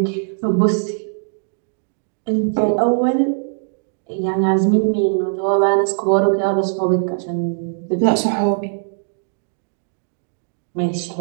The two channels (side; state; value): left; silent; digital silence